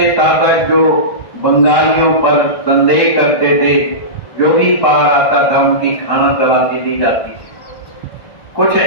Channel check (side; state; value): right; late; 1.5 ms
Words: शासक जो बंगालियों पर संदेह करते थे, जो भी पार आता था उनकी खाना तलाशी दी जाती थी। कुछ